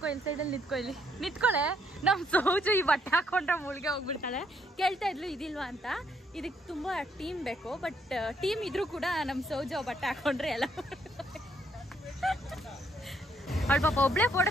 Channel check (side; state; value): both; normal; correlation 0.71